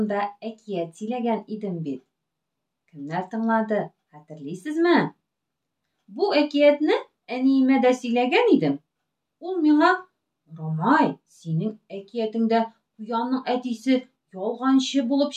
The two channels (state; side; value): identical; both; correlation 1.00